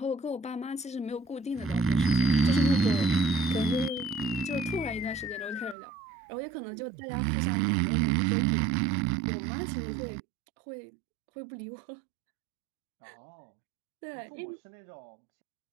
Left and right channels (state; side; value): drops out; left; at 5.8 s